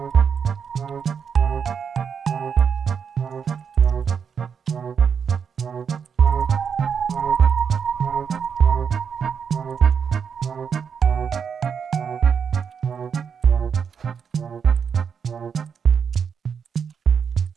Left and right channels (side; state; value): left; quieter; 6.8 dB